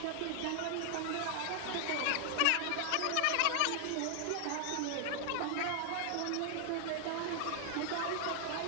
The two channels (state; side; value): different; both; correlation 0.00